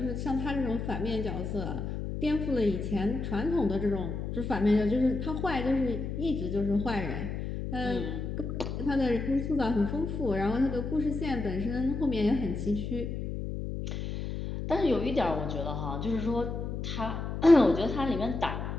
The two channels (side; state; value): left; noise; hum, 4 dB below the sound